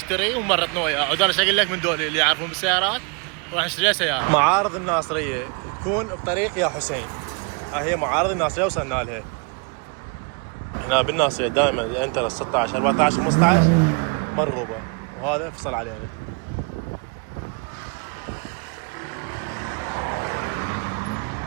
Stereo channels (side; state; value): left; quieter; 34.4 dB